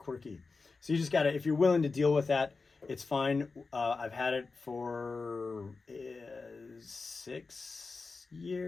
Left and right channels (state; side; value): quieter; right; 4.2 dB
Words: So you just gotta, if you're willing to deal with that, it's fine. I've had it for 6